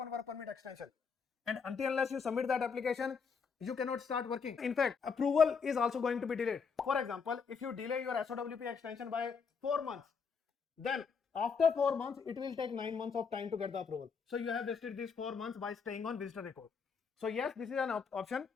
work permit extension. And until unless you submit that application, you cannot start working. In fact, approval is also going to be delayed. For example, if you delay your SOWP extension by 4 months, then after 4 months, it will take 9 months of time to get the approval. So you have wasted these 4 months by staying on visitor record. So yes, this is an option,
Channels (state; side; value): quieter; right; 5.7 dB